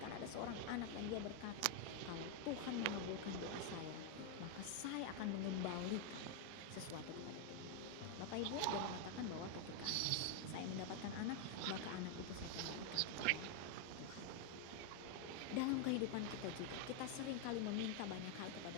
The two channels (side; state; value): both; different; correlation 0.00